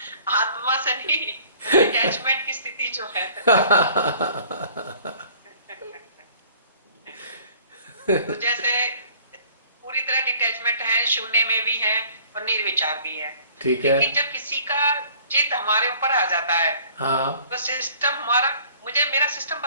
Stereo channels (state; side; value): inverted; both; correlation -0.53